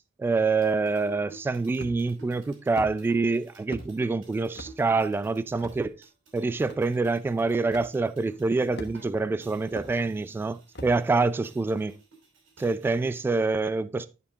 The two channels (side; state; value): left; quieter; 3.3 dB